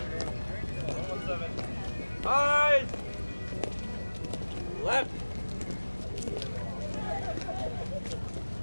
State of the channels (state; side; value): inverted; both; correlation -1.00